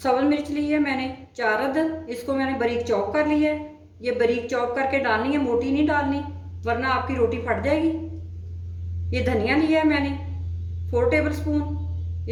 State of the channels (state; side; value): identical; both; correlation 1.00